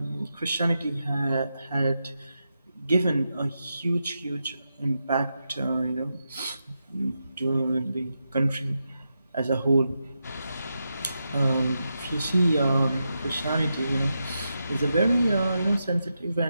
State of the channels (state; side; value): inverted; both; correlation -0.87